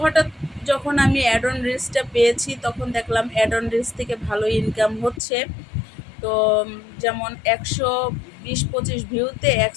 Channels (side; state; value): right; drops out; at 5.2 s